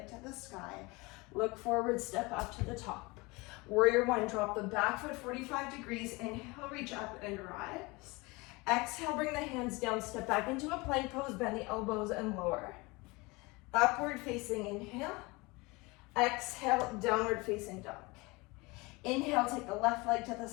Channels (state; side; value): quieter; right; 24.7 dB